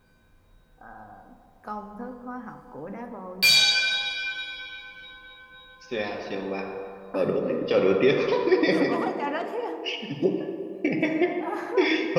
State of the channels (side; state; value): both; identical; correlation 1.00